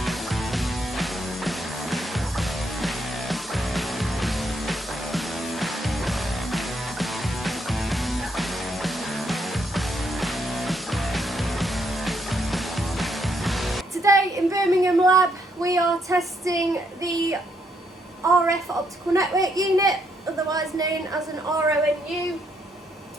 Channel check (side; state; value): both; normal; correlation 0.74